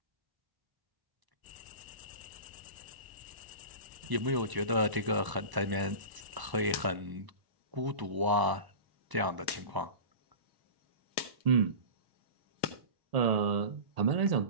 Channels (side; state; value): left; late; 1.0 ms